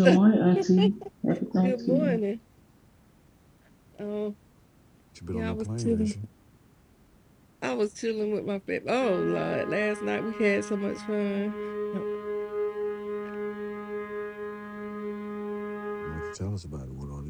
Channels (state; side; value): identical; both; correlation 1.00